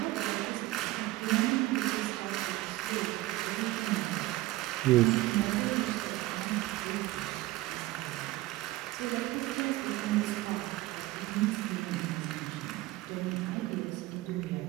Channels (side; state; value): left; quieter; 17.8 dB